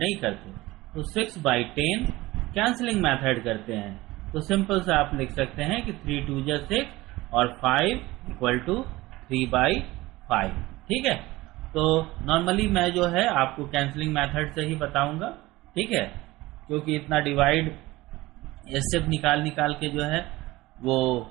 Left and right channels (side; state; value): left; quieter; 19.2 dB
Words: करते, तो 6/10 कैंसलिंग मेथड करते हैं, तो सिंपल से आप लिख सकते हैं कि 3 2 6 और 5 = 3/5। ठीक है, तो नॉर्मली मैं जो है आपको कैंसलिंग मेथड से ही बताऊंगा। ठीक है, क्योंकि इतना डिवाइड एचसीएफ निकाल के जो है वो